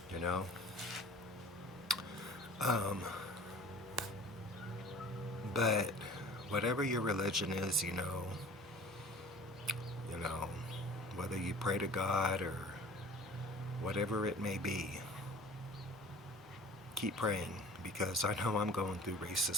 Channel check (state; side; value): normal; both; correlation 0.44